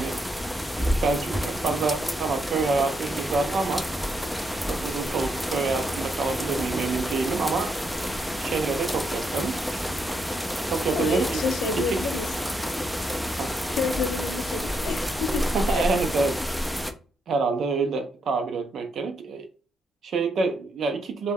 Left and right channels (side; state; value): both; normal; correlation 0.79